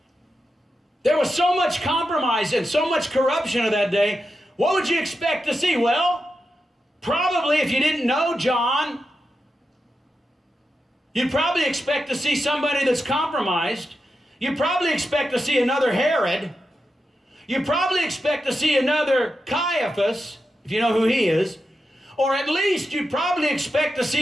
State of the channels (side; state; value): both; normal; correlation 0.88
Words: There was so much compromise and so much corruption of that day. What would you expect to see? Well, probably if you didn't know John, you'd probably expect to see somebody that's compromised. You'd probably expect to see another Herod. You'd probably expect to see another Caiaphas, if you know who he is. Or at least you'd probably expect to